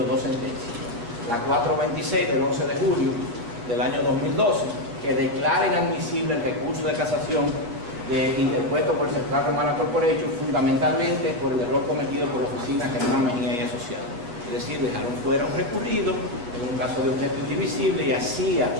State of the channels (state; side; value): late; left; 8.5 ms